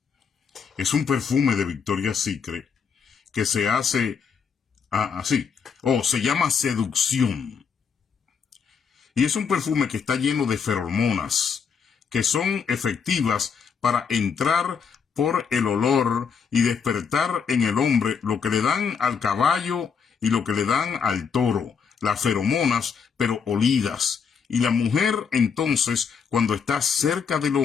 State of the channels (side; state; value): right; quieter; 6.3 dB